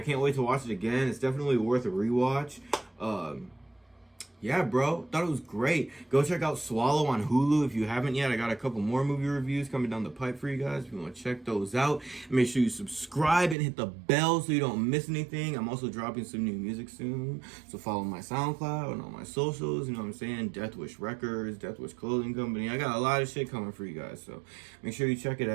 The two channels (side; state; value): left; drops out; at 13.6 s